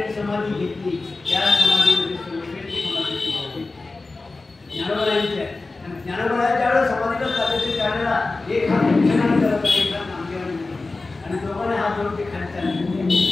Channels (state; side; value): quieter; right; 3.5 dB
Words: समाधी घेतली त्या समाधीमध्ये सर्वश्रेष्ठ समाधीची होती ज्ञानोबांची आहे. ज्ञानोबाच्या ज्यावेळेला समाधीला चालायचे त्यावेळेला एक हात उंचनाने करत एक हात नामदेवाने आणि दोघांनी हात जोडून ते खाली चालले.